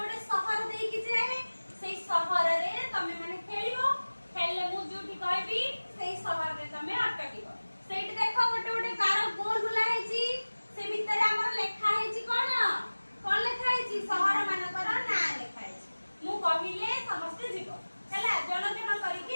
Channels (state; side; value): inverted; both; correlation -1.00